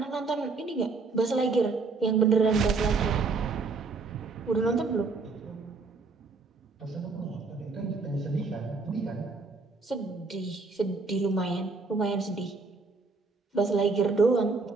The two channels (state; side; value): quieter; left; 4.1 dB